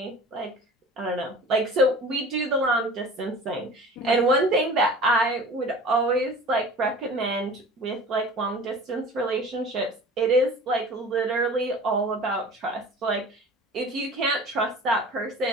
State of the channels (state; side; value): normal; both; correlation 0.41